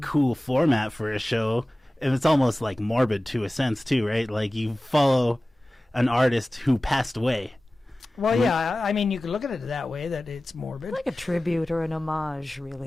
cool format for a show. And it's almost like morbid to a sense, too, right? Like you follow an artist who passed away. Well, yeah. I mean, you could look at it that way, that it's morbid. Like a tribute or an homage,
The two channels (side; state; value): both; normal; correlation 0.97